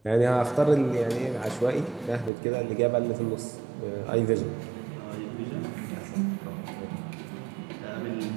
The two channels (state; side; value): drops out; left; at 2.3 s